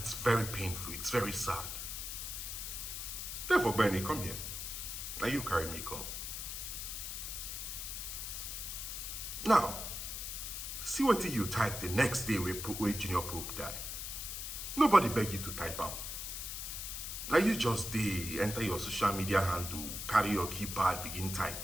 very painful, it's very sad. Therefore, Bernie, come here. Now you carry me, come. Now, see what you type the next day where Junior Pope died. Nobody beg you to type out. Now you just enter your social media handle, carry your keypad, begin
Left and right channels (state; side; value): noise; left; hiss, 5 dB below the sound